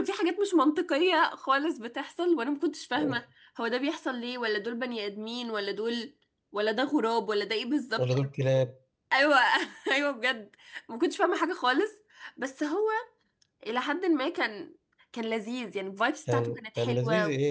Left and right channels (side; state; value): both; identical; correlation 1.00